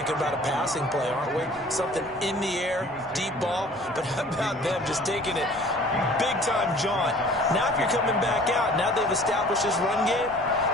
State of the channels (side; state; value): both; normal; correlation 0.49